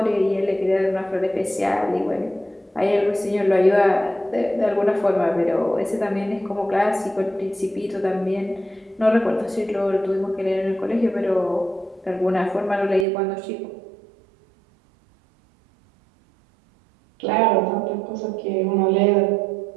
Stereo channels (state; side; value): drops out; left; at 13.1 s